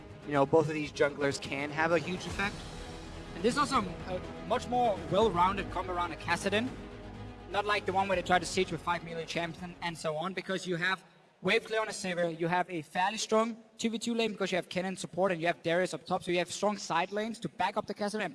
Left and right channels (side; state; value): both; identical; correlation 1.00